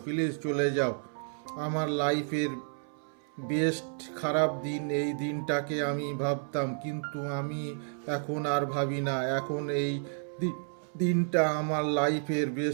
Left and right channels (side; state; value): left; silent; 57 dB below the other